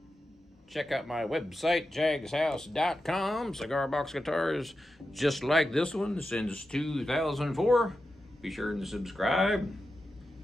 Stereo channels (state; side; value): normal; both; correlation 0.90